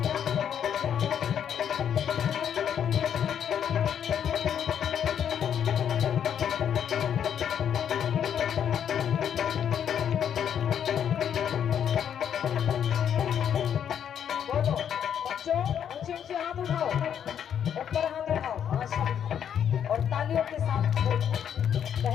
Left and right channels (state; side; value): quieter; right; 8.8 dB